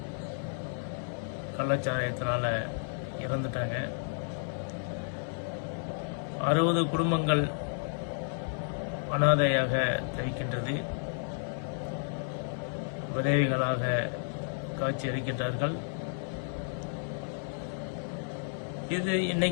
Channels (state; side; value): silent; right; 56 dB below the other